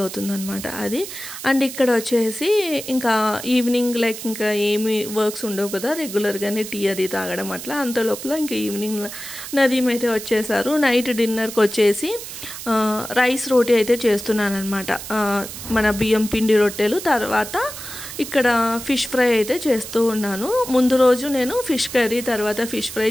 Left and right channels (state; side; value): noise; right; hiss, 10 dB below the sound